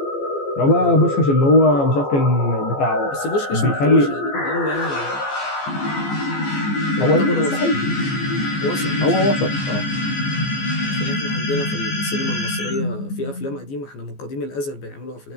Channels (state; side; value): late; right; 14 ms